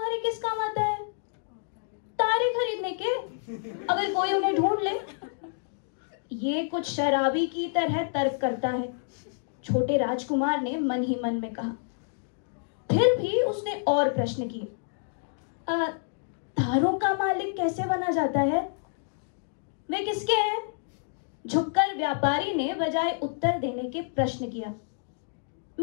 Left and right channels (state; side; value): silent; right; digital silence